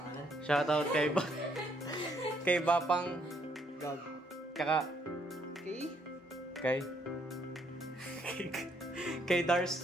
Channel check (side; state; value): both; normal; correlation 0.70